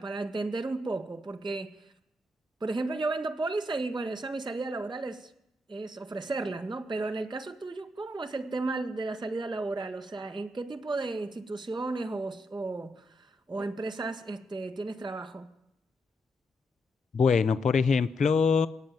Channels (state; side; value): normal; both; correlation 0.81